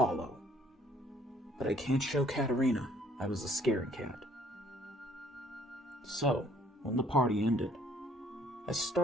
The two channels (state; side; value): normal; both; correlation 0.61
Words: But I can't show Katerina I was a scaredy cat. So, when the party ended, I